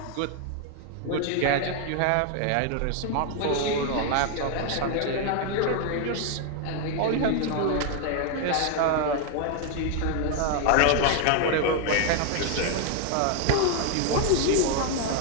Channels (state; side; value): different; both; correlation 0.00